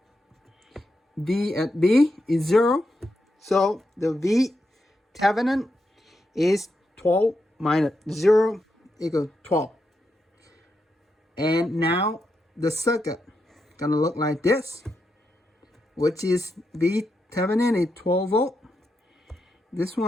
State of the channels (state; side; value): normal; both; correlation 0.84